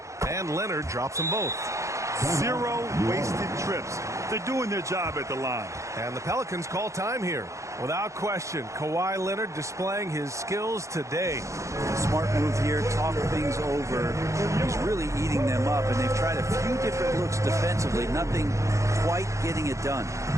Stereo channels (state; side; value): late; left; 0.15 ms